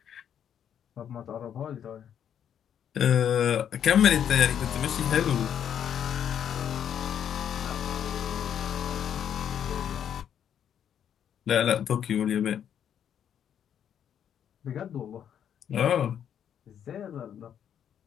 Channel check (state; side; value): quieter; right; 9.1 dB